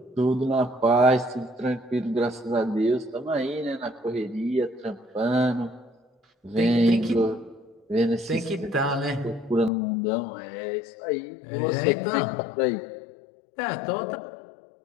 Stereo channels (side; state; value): right; drops out; at 9.7 s